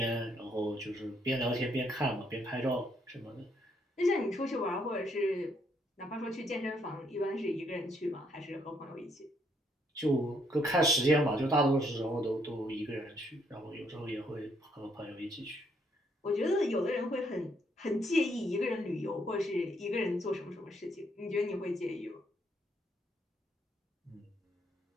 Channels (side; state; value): both; normal; correlation 0.71